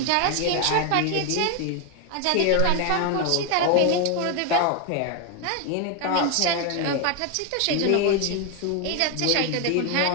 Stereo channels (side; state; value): both; different; correlation 0.01